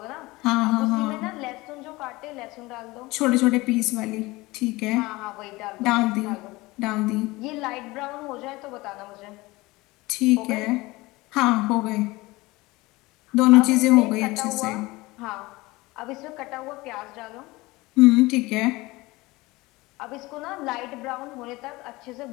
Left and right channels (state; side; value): quieter; right; 21.3 dB